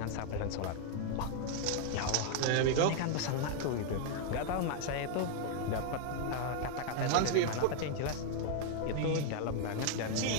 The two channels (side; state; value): both; different; correlation 0.00